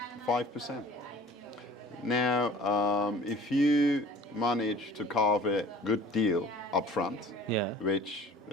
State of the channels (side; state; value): both; normal; correlation 0.47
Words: 5%. Now, if you manage to carve a good deal up front, Yeah. which